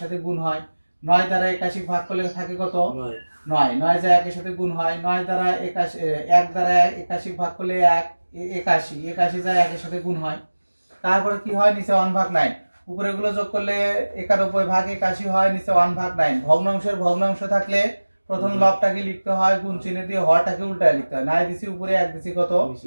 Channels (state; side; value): inverted; both; correlation -1.00